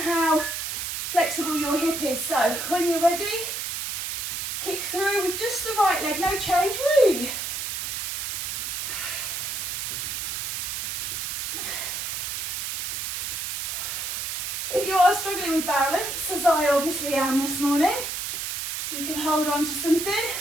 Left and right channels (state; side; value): noise; right; hiss, 3 dB below the sound